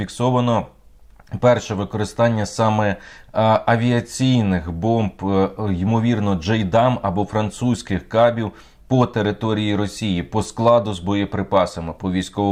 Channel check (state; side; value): identical; both; correlation 1.00